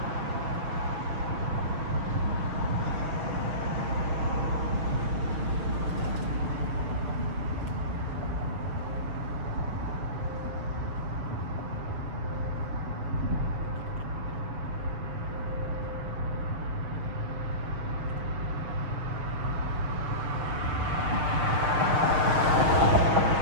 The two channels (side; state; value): left; late; 6.6 ms